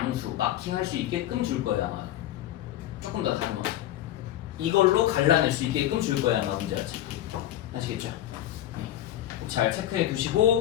마킹할 수 있게끔 줄 거예요 아마. 조금 더 다듬어서 이걸로 갈라낼 수 있게끔 줄 거예요 아마 문제 자체. 아시겠죠? 잘 체크해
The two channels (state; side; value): quieter; right; 12.9 dB